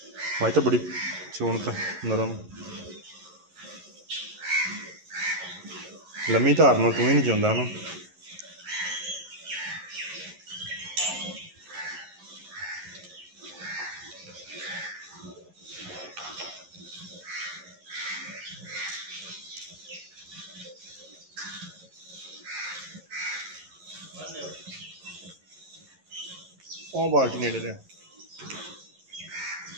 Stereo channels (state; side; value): late; left; 11 ms